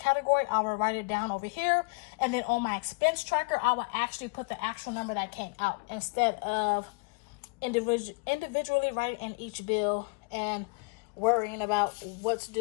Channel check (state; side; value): quieter; right; 32.0 dB